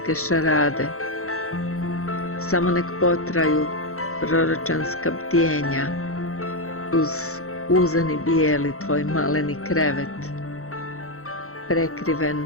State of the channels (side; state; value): right; late; 0.63 ms